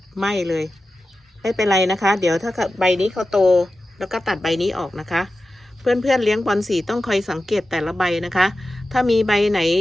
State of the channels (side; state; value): both; normal; correlation 0.93